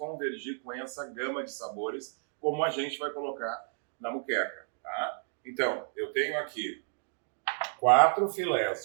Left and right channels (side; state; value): left; silent; digital silence